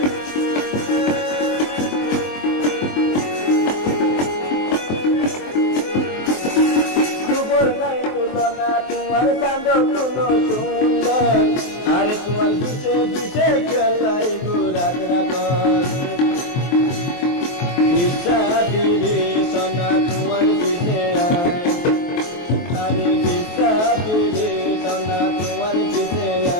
তোমার চাঁদ কোনো সুন্দর, আরে তোমার পিছে পিছে খেলাই ঘুরাত রাখ। কিসা ফিরে সোনা তোমার পিছে আয়, আরে কিসা ফিরে সোনা তোমার পিছে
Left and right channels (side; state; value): right; late; 23 ms